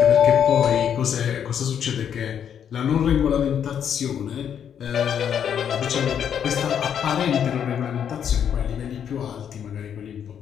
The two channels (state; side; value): quieter; right; 8.5 dB